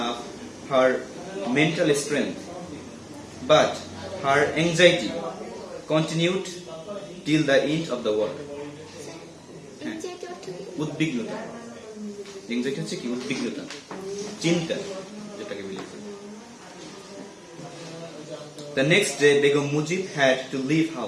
up her mental strength, but her anxiety continued till the end of the war. উদ্বিগ্নতা, anxiety হচ্ছে কি? উদ্বিগ্নতা, চিন্তা যেটাকে বলি। The next day, Begum Mujib had to leave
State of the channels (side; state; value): both; identical; correlation 1.00